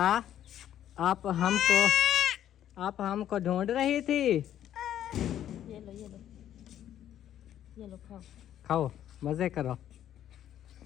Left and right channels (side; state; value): right; quieter; 11.1 dB